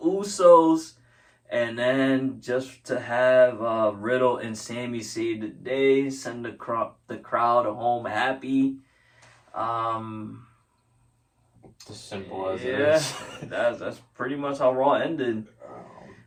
And then just to have Riddle and Sami save the day, send the crowd home happy. As simple as it Yeah, is. that's pretty much how Raw ended.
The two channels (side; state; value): both; identical; correlation 1.00